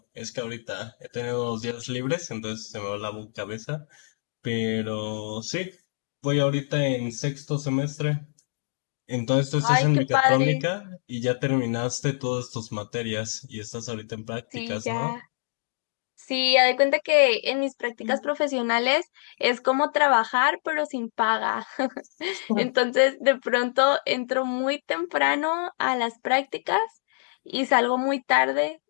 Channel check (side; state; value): right; silent; digital silence